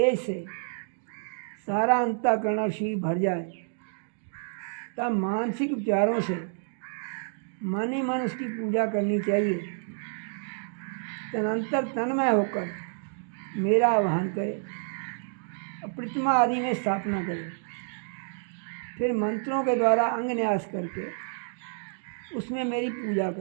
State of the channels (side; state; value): left; silent; digital silence